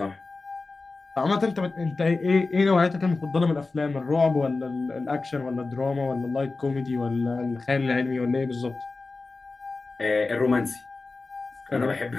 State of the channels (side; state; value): right; quieter; 3.7 dB